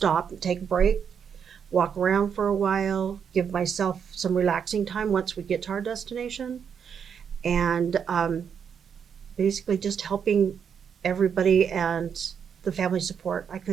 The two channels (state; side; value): quieter; left; 7.3 dB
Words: and take a break, walk around for a while, give myself some relaxing time once we get to our destination, and basically just helping everybody and the family support. I